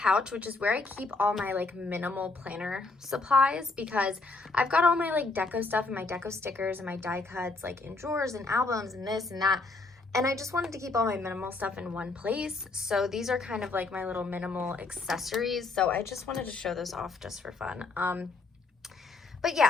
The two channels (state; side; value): quieter; right; 3.7 dB